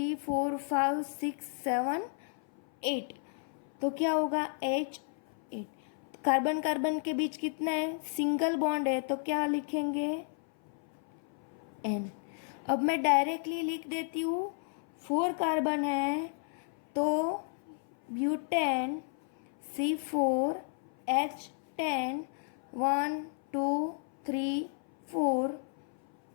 4 5 6 7 8, तो क्या होगा H8। कार्बन कार्बन के बीच कितना है सिंगल बॉन्ड है, तो क्या लिखेंगे N। अब मैं डायरेक्टली लिख देती हूँ, 4 कार्बन है तो ब्यूटेन C4H10 1 2 3 4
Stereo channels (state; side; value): silent; right; 56 dB below the other